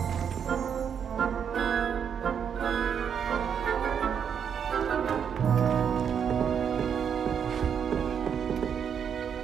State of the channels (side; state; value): left; quieter; 7.7 dB